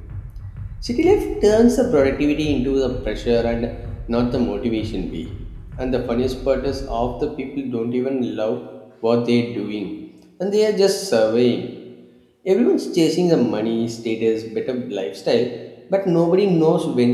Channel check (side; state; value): both; identical; correlation 1.00